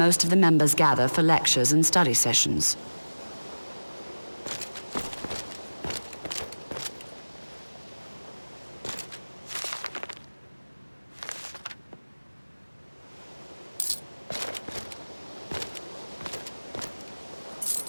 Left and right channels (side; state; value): both; inverted; correlation -1.00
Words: of the members gather for lectures and study sessions.